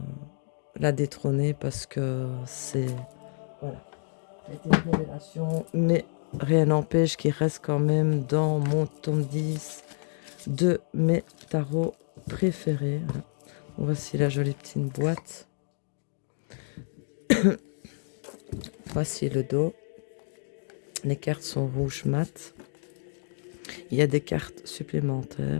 l'a détrôné parce que c'est... Voilà, c'était une révélation. Mais rien n'empêche qu'il reste quand même dans mon tome 10 de mes tarots préférés. Voici la jolie petite boîte. Voici le dos. Les cartes sont rouges mat. Il y a des cartes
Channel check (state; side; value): silent; right; 57 dB below the other